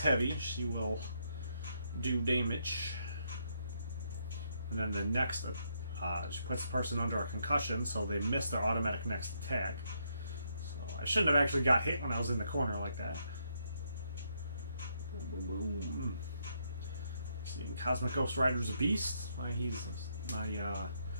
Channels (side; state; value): both; inverted; correlation -0.76